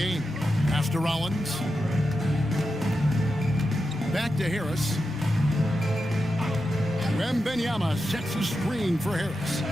Pass to Rollins. Back to Harris. Wembanyama sets a screen for Harris.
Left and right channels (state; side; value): normal; both; correlation 0.89